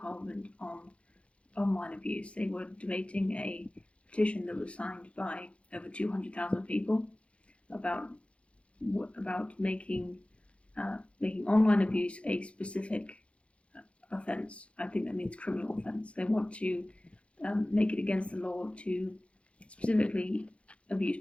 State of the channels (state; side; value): late; right; 0.061 ms